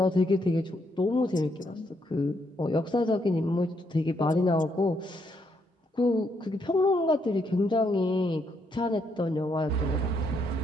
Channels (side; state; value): both; normal; correlation 0.75